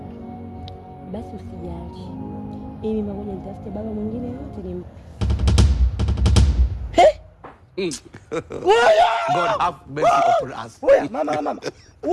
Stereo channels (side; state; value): both; identical; correlation 1.00